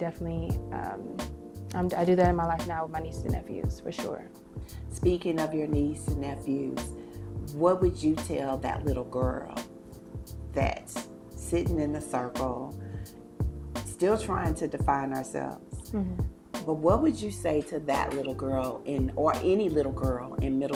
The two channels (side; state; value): both; identical; correlation 1.00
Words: I do that in my life now with my nieces and nephews, for sure. Speaking of your niece and nephews, what would you tell that little girl that's sitting in the circle, still trying to define ourselves? Mm-hmm. But what would you say to that little girl or any little girl in